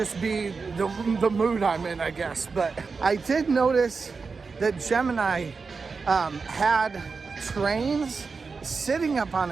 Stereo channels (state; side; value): quieter; left; 4.7 dB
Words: be the mood I'm in, I guess. But I did notice that Gemini had trains sitting up on